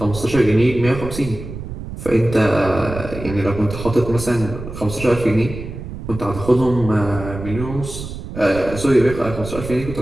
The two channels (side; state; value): right; noise; rumble, 10 dB below the sound